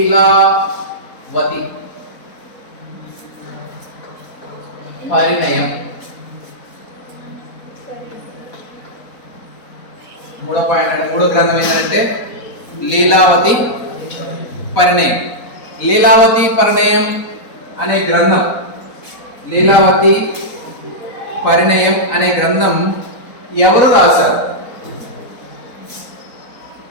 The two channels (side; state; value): right; late; 4.1 ms